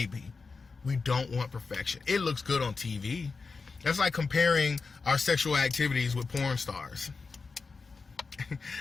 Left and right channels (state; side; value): quieter; right; 4.5 dB